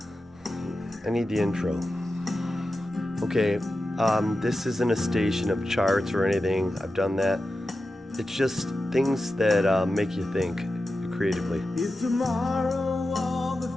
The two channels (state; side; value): normal; both; correlation 0.92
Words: I need the intro. Okay, this isn't a station of charts or anything. I've done that. It's just things that make you think creatively. If tomorrow all the